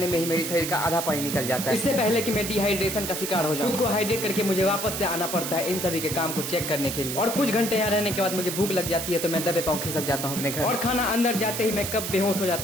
में ही मेरे शरीर का आधा पानी निकल जाता है। इससे पहले कि मैं डिहाइड्रेशन का शिकार हो जाऊं, खुद को हाइड्रेट करके मुझे वापस से आना पड़ता है इन सभी के काम को चेक करने के लिए। और कुछ घंटे यहाँ रहने के बाद मुझे भूख लग जाती है तो मैं दबे पाँव खिसक जाता हूँ अपने घर, और खाना अंदर जाते ही मैं कब बेहोश हो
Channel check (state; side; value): noise; right; hiss, 4 dB below the sound